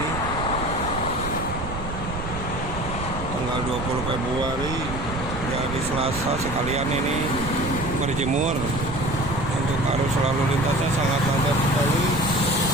tanggal 20 Februari, dari Selasa. Sekalian ini berjemur. Untuk arus lalu lintasnya sangat padat sekali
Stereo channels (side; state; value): right; noise; rumble, 7 dB below the sound